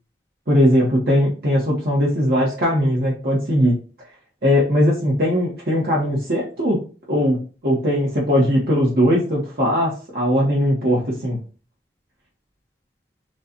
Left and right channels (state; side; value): normal; both; correlation 0.65